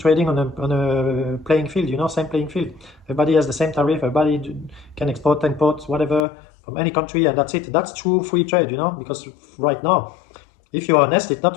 on a playing field, same playing field. Everybody has the same tariff, everybody can export, import, whatever, from any country, and that's it. That's true free trade, because right now, if you're honest, it's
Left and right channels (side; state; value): right; drops out; at 6.2 s